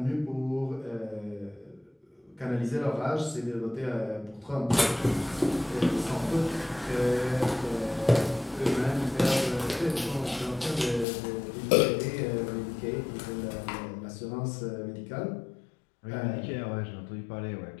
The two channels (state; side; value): drops out; right; at 11.1 s